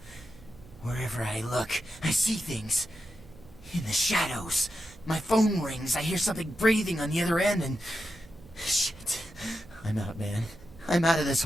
wherever I look, I see things. In the shadows. My phone rings, I hear something breathing on the other end, and... Shit. I'm out, man. I'm out of this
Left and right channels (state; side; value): noise; right; hum, 22 dB below the sound